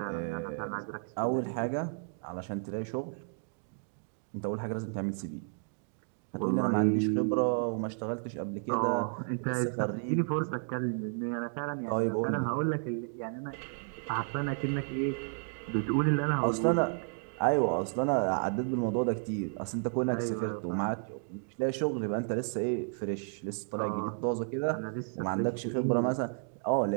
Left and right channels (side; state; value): left; silent; 56 dB below the other